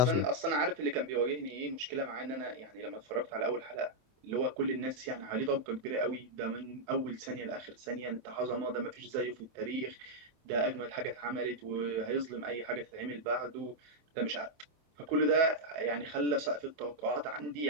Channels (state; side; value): late; left; 24 ms